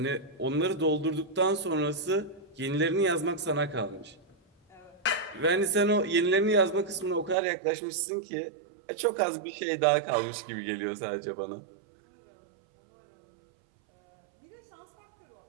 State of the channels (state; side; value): drops out; left; at 7.4 s